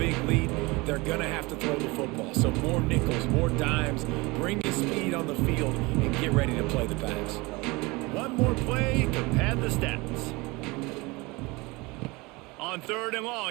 lead. They're going to have to throw the football. So more nickels, more dimes. Bring the speed on the field and get ready to play the pass. One more play to pad the stats. On 3rd and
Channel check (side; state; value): left; quieter; 24.2 dB